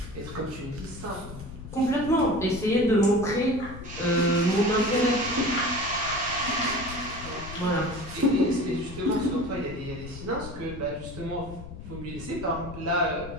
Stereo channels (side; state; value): left; noise; rumble, 12 dB below the sound